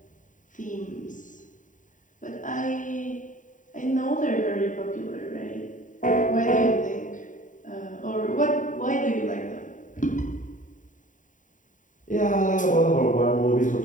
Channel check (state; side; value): late; right; 0.37 ms